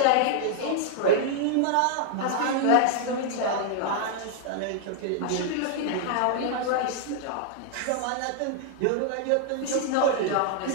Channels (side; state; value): both; different; correlation -0.01